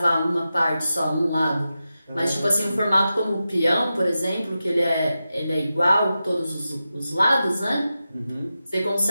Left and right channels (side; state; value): both; inverted; correlation -0.92